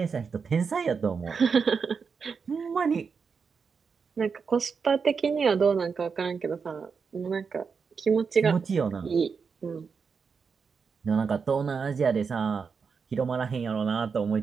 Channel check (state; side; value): quieter; left; 5.7 dB